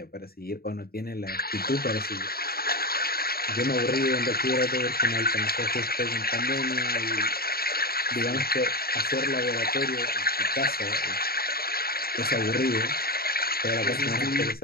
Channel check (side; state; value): right; late; 0.44 ms